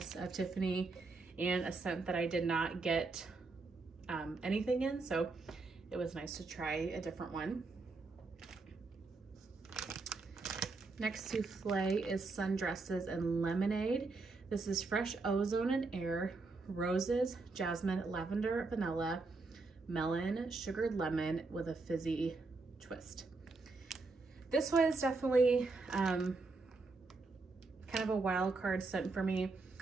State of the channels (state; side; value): quieter; left; 3.8 dB